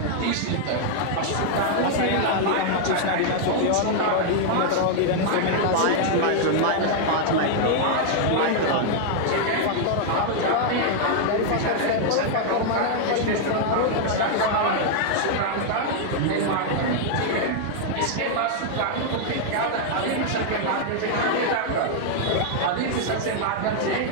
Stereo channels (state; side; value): different; both; correlation 0.00